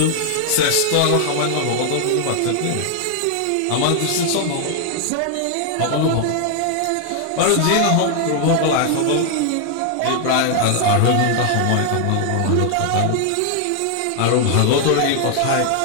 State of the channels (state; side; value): different; both; correlation 0.00